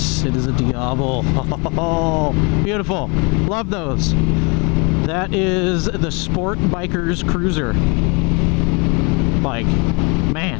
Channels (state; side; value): quieter; right; 31.8 dB